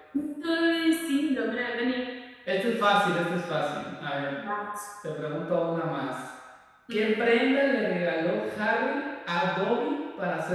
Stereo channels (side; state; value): both; identical; correlation 1.00